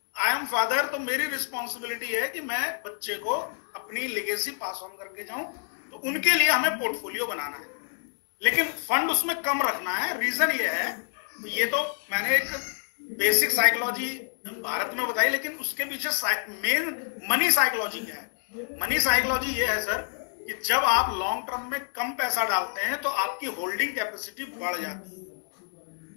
आई एम फादर, तो मेरी रिस्पॉन्सिबिलिटी है कि मैं बच्चे को अपनी लेगेसी पास ऑन करके जाऊं। तो उनके लिए हमें पोर्टफोलियो बनाना है, लेकिन फंड उसमें कम रखना है। रीजन ये है, ये तो मैंने एक बेसिक साइकोलॉजी भारत में बताई, लेकिन उसके पीछे मेन मनी साइकोलॉजी क्या है? मनी साइकोलॉजी ये है सर कि जब आप लॉन्ग टर्म में कम पैसा डालते हैं तो आपकी होल्डिंग कैपेसिटी बढ़ जाती है।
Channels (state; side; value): silent; right; digital silence